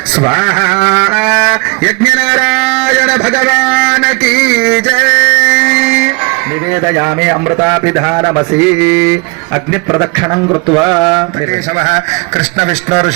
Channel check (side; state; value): left; quieter; 29.4 dB